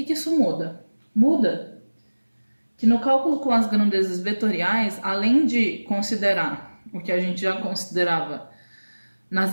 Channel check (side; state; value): both; inverted; correlation -1.00